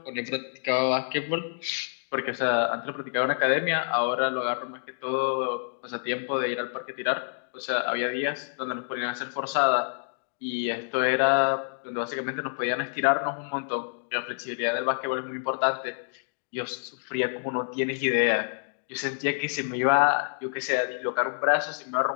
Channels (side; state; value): right; silent; digital silence